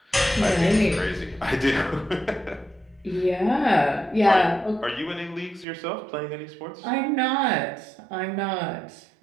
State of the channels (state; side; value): drops out; left; at 5.7 s